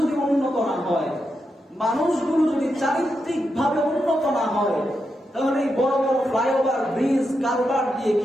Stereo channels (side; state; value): both; normal; correlation 0.85